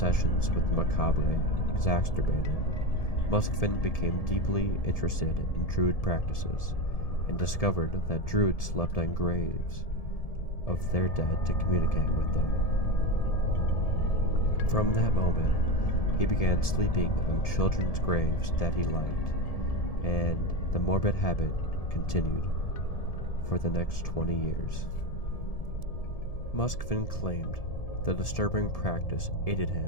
with the macabre exacerbated, Moskvin became deeply interested in Druid practices and discovered that Druids slept on graves of their dead to communicate with them. From that moment, he began sleeping on children's graves that he liked, and the morbid habit continued for the next 20 years. Moskvin claimed the disturbing practice aided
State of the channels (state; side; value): late; right; 1.7 ms